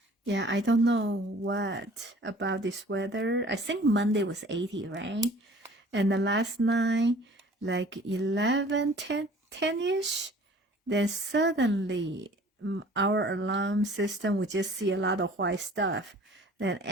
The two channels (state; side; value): normal; both; correlation 0.50